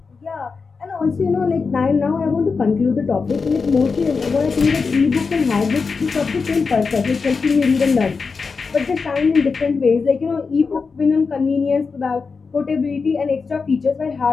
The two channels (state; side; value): quieter; right; 4.9 dB